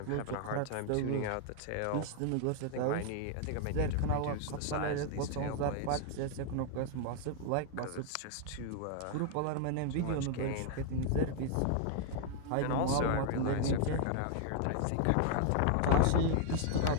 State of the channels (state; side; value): different; both; correlation 0.00